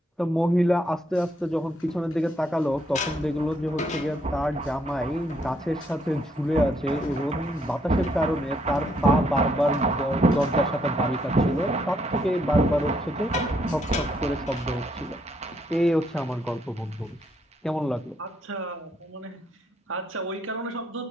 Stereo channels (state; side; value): normal; both; correlation 0.73